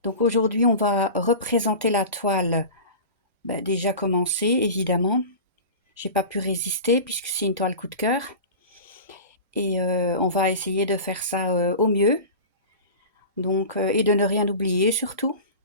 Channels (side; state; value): both; inverted; correlation -0.33